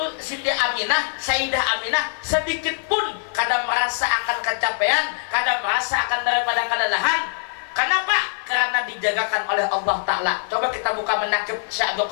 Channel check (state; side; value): silent; right; 56 dB below the other